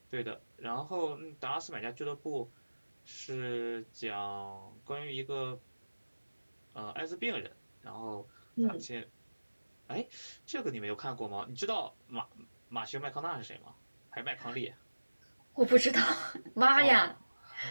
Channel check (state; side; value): inverted; both; correlation -1.00